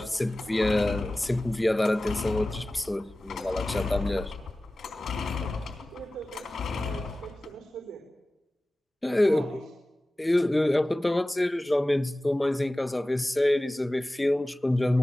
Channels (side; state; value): both; normal; correlation 0.97